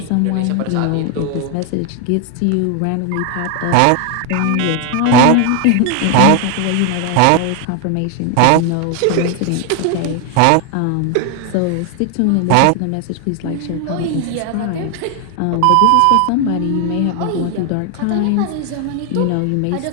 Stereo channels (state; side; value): different; both; correlation 0.01